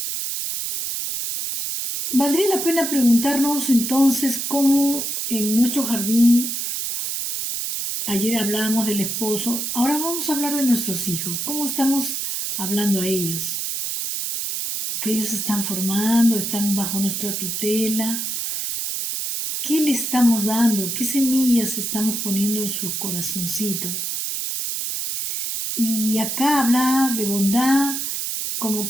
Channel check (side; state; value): right; noise; hiss, 2 dB below the sound